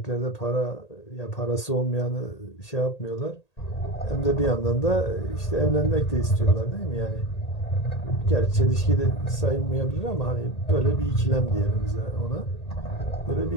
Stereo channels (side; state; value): right; late; 1.8 ms